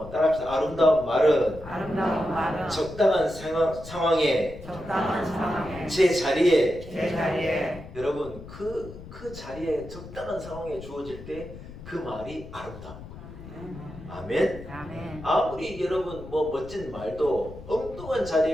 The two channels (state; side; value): noise; left; rumble, 14 dB below the sound